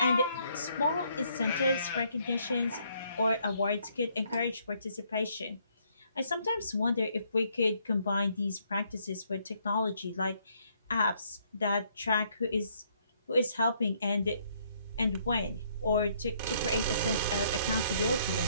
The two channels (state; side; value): inverted; both; correlation -0.68